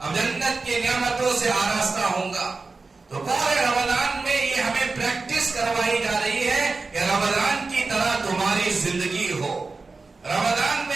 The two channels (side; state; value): left; quieter; 3.9 dB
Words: جنت کی نعمتوں سے آراستہ ہوں گا۔ تو پورے رمضان میں یہ ہمیں پریکٹس کروائی جا رہی ہے کہ رمضان کی طرح تمہاری زندگی ہو۔ رمضان